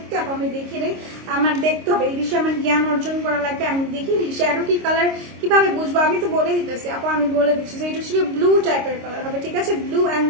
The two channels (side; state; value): left; late; 26 ms